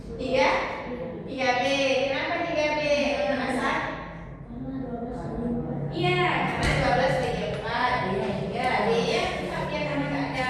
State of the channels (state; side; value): identical; both; correlation 1.00